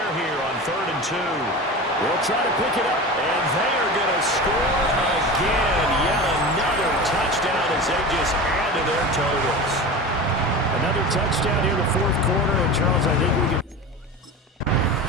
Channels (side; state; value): both; normal; correlation 0.30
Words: here on 3rd and 2. They'll try to pick it up, and they are going to score again. Yet another touchdown as they just add to their totals. Another touchdown here in the 4th quarter, and Charles, I think we can.